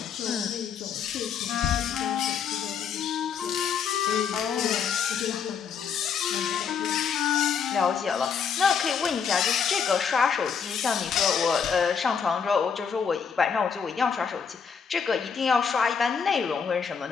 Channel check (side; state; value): right; quieter; 6.7 dB